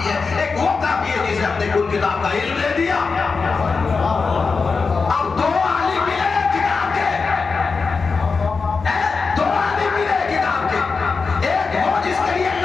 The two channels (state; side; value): quieter; right; 4.7 dB